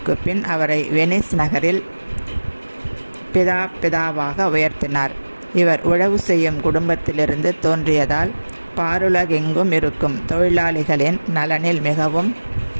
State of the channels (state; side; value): inverted; both; correlation -1.00